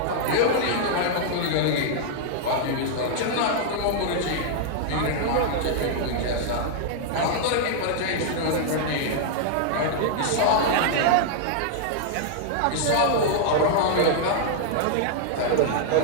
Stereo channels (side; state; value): both; different; correlation -0.01